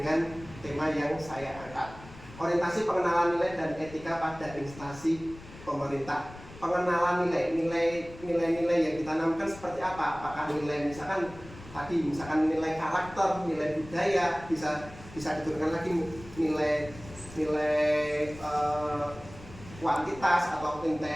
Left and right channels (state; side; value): noise; left; rumble, 17 dB below the sound